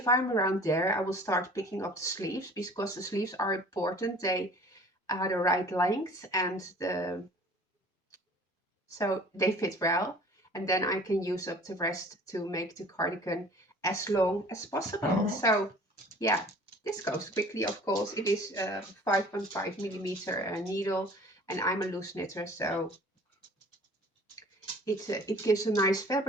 I'm around there, I will start picking up the sleeves, because the sleeves are important. They are the right length, and so they fit well. And then I can use up the rest to make the cardigan as long as possible. So yeah, this goes quickly, of course. It is a 5.5 millimeter needle, and I'm a loose knitter, so it gives a nice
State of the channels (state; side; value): normal; both; correlation 0.48